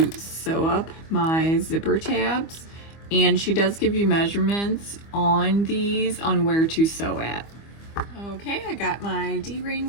sew up my zipper tabs, and she does give you measurements on these on where to sew at. Okay, I got my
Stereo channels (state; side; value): late; right; 25 ms